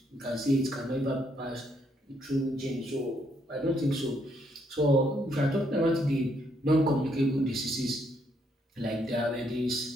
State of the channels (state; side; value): normal; both; correlation 0.73